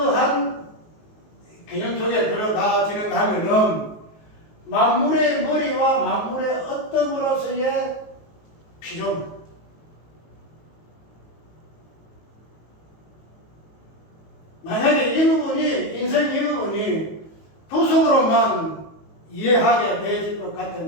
개념 속에 들어가지는 하면은 만물의 머리와 만물의 어떤으로서의 피조물. 만약에 이 부분이, 인생 이 부분이 구속으로만 이해하게 되질 것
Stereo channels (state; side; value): late; right; 19 ms